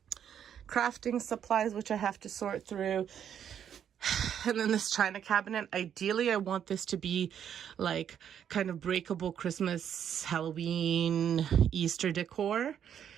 Crafting supplies, which I have to sort through. And then this china cabinet, ideally I want this to be like kind of breakable Christmas, Halloween, Easter decor,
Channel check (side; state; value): left; quieter; 9.0 dB